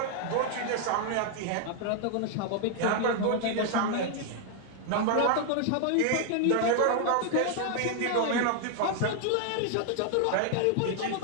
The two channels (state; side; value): different; both; correlation 0.00